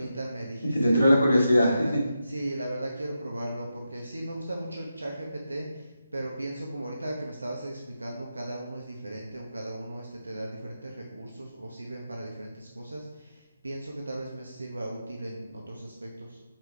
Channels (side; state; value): both; inverted; correlation -0.88